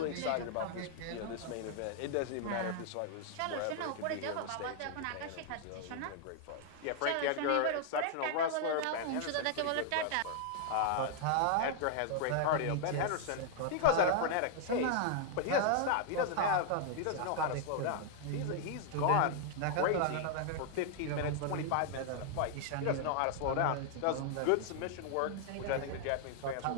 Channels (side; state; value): both; different; correlation 0.00